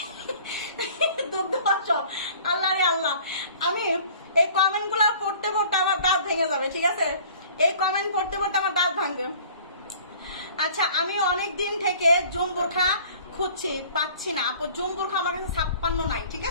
দুগ্ধ অঞ্চল। আল্লাহ রে আল্লাহ, আমি এই কমেন্ট গুলা পড়তে পড়তে আমার দাঁত ভেঙে যাবে, ঠিক আছে। এই কমেন্ট পড়তে পড়তে আমার দাঁত ভাঙবে। আচ্ছা, আমি অনেক দিন থেকে জুম বোরখা খুঁজছি, পাচ্ছি না আপু। জুম বোরখা আমার কাছে 56 নাই, ঠিক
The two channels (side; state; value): both; inverted; correlation -0.49